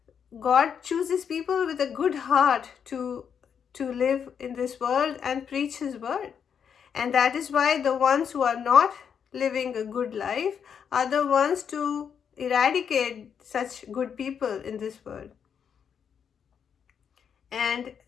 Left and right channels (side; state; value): right; quieter; 7.5 dB